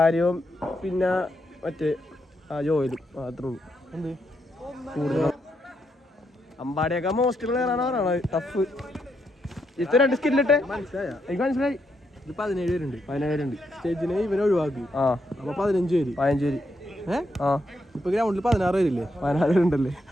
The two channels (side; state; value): both; normal; correlation 0.80